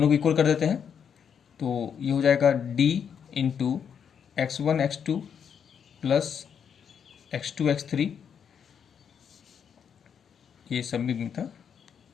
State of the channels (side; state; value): right; quieter; 7.6 dB